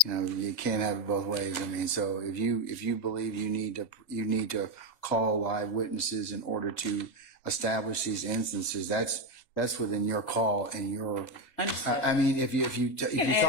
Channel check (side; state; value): right; late; 2.0 ms